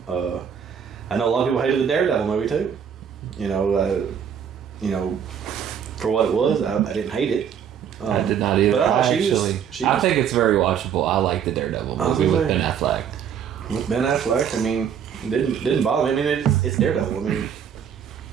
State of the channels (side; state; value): left; quieter; 8.1 dB